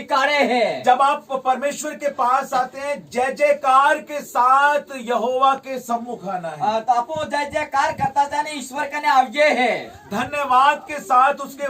है। जब आप परमेश्वर के पास आते हैं जय जयकार के साथ यहोवा के सम्मुख आना है। तो अपो जय जयकार करता जाने ईश्वर कने आवजे है। धन्यवाद के साथ उसके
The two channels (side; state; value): both; identical; correlation 1.00